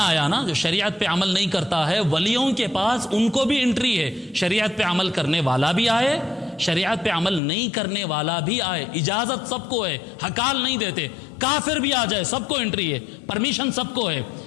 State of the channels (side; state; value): right; drops out; at 7.4 s